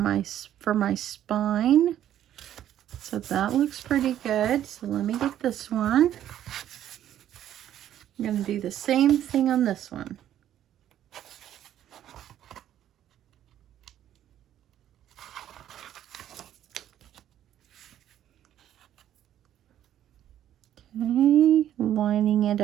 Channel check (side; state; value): left; quieter; 11.3 dB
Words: for my spine. So that looks pretty good. So let me get this one. I'm going to do the same thing on this one. Okay, lining it